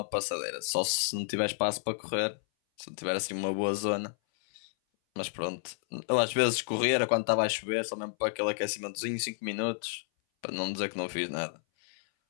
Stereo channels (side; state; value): right; silent; 57 dB below the other